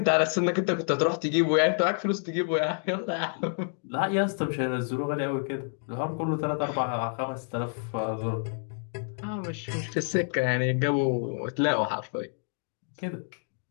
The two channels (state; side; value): silent; right; 59 dB below the other